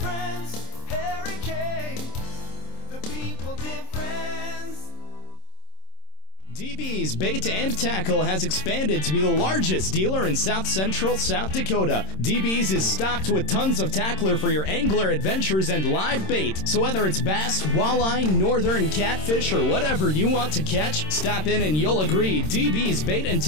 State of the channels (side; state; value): right; late; 26 ms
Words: Harry K, the people difference. DB's Bait and Tackle has expanded to be the largest dealer in South Central South Dakota. DB's is stocked with tons of tackler for your angler adventures and live bait. So whether it's bass, walleye, northern catfish, or whatever you want to catch, stop in and you'll agree DB's Bait and